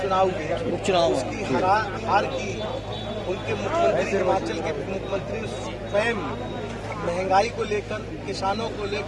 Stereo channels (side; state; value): both; identical; correlation 1.00